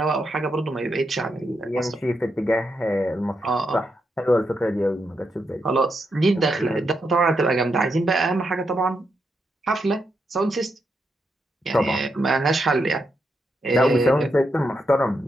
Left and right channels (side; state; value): both; normal; correlation 0.82